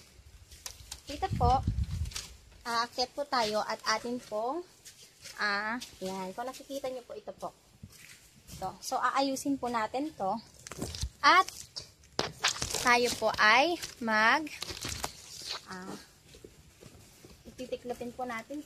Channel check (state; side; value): identical; both; correlation 1.00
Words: Dito po, aakyat po tayo at atin po, yan. Kung nakikita niyo po, ito po. Ito. So, aayusin po natin to. At, tayo po ay titiklopin po natin